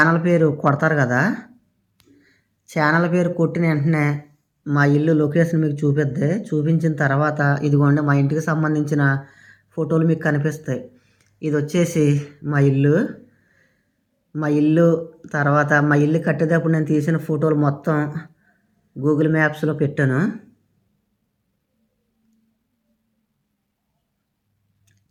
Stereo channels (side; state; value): both; identical; correlation 1.00